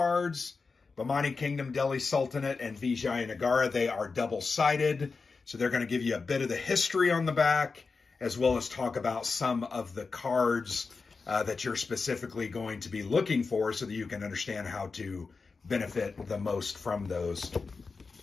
Bahmani Kingdom, Delhi Sultanate, and Vijayanagara. They are double-sided, so they're going to give you a bit of the history on the back, as well as talk about some of the cards that you're specifically going to be looking for so that you can understand how to benefit the most from those.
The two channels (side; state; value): right; quieter; 4.5 dB